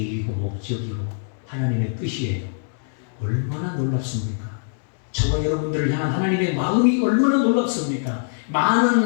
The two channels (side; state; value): right; silent; digital silence